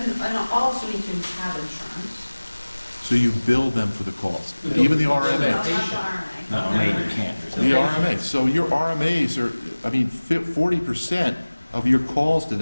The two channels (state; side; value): inverted; both; correlation -1.00